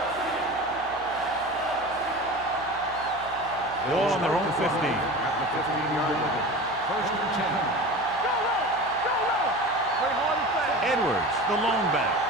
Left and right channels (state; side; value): noise; right; hum, 21 dB below the sound